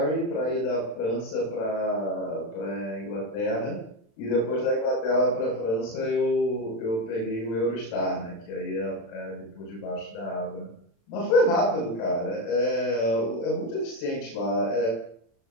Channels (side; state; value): right; late; 36 ms